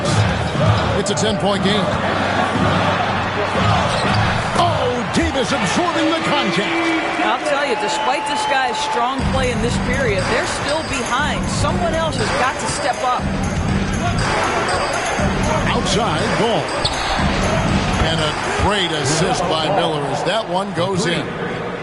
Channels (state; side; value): identical; both; correlation 1.00